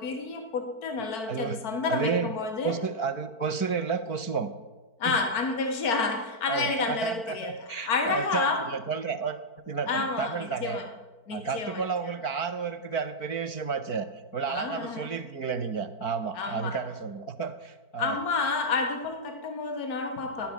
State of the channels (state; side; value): late; right; 4.5 ms